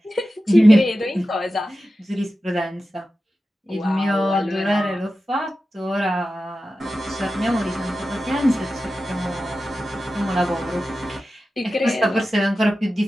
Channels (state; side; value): normal; both; correlation 0.93